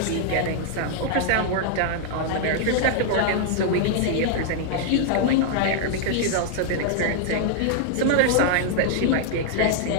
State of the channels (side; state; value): both; different; correlation -0.01